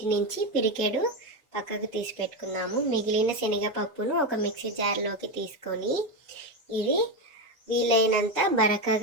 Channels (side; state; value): both; normal; correlation 0.12